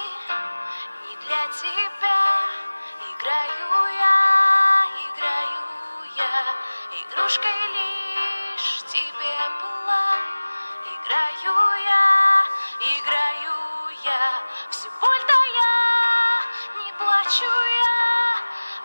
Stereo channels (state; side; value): inverted; both; correlation -1.00